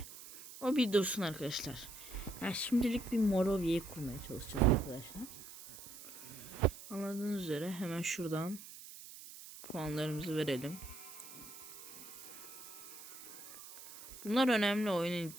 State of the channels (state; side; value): noise; right; hiss, 14 dB below the sound